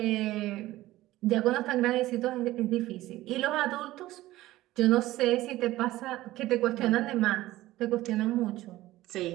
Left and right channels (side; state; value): left; quieter; 16.5 dB